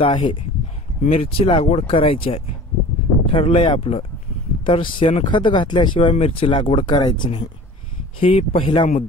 आहे, मिरची लागवड करायची आहे, ठरलंय आपलं, तर शेणखत घातल्याशिवाय मिरची लागवड करायची नाही. ही पहिला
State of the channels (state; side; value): normal; both; correlation 0.42